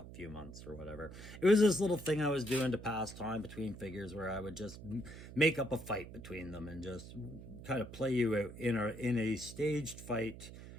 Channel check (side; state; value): right; noise; hum, 14 dB below the sound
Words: few months or whatever, it was this little thing I was doing to pass time between figures where I would just make up a fight between them and just kind of play you out in a staged fight